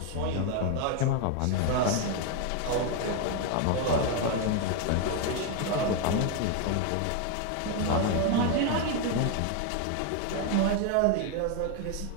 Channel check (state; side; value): different; both; correlation 0.01